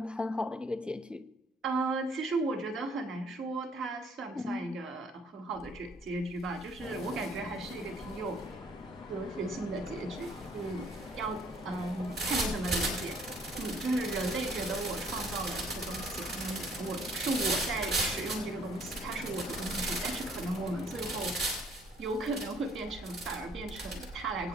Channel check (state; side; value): normal; both; correlation 0.61